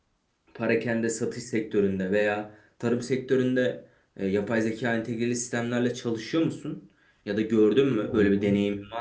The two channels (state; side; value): identical; both; correlation 1.00